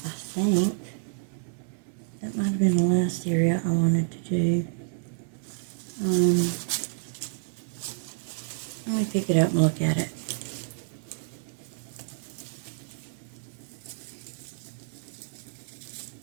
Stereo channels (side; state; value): left; silent; 59 dB below the other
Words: think. That might have been the last area I wanted to do. Let me pick it up and look at it.